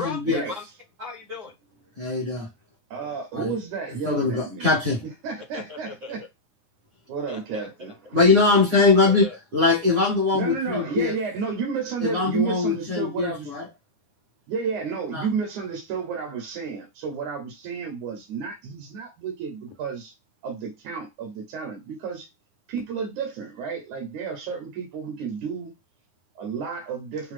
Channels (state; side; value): late; left; 9.7 ms